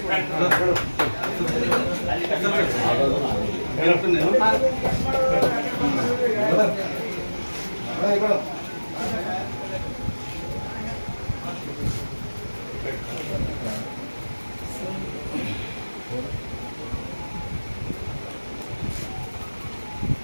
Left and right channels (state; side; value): inverted; both; correlation -1.00